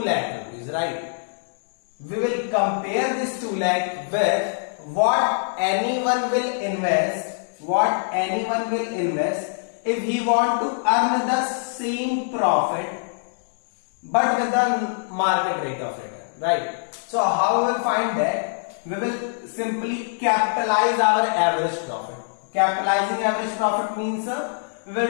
lakh rupees, right? We will compare this 2 lakh with what anyone will invest if he want to earn the same profit but with the market rate of return, right? So how we will find that? We will simply capitalize our average profit. Capitalizing average profit means we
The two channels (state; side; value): silent; right; digital silence